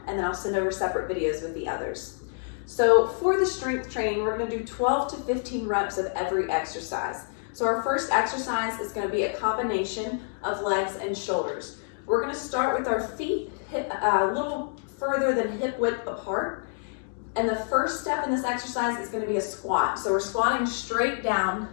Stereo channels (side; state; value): right; silent; digital silence